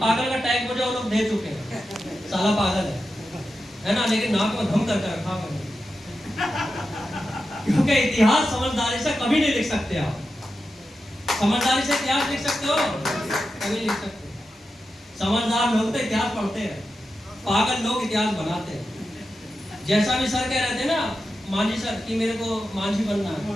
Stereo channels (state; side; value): normal; both; correlation 0.90